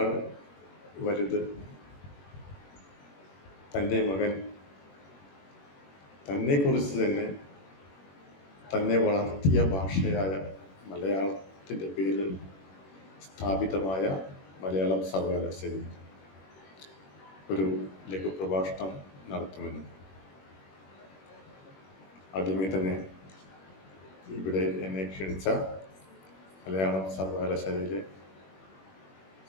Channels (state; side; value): late; right; 21 ms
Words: വലുത് തൻ്റെ മകൻ തന്നെക്കുറിച്ച് തന്നെ വളർത്തിയ ഭാഷയായ മലയാളത്തിൻ്റെ പേരിൽ സ്ഥാപിതമായ മലയാളം സർവകലാശാലയിൽ ഒരു ലഘുപ്രഭാഷണം നടത്തുമെന്നും ആദ്യമേ തന്നെ ഇവിടെ എന്നെ ക്ഷണിച്ച മലയാളം സർവകലാശാലയിലെ